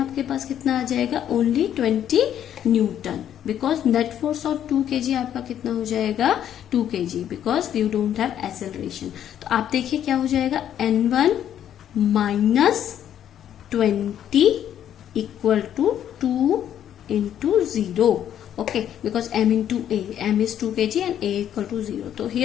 पास कितना आ जाएगा, only 20 newton, because net force of 2 kg आपका कितना हो जाएगा, 2 kg, because you don't have acceleration. तो आप देखिए क्या हो जाएगा, n1 minus 20 equal to 2 into 0, okay, because m into a, m is 2 kg and a equal to 0, तो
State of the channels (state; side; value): quieter; right; 10.3 dB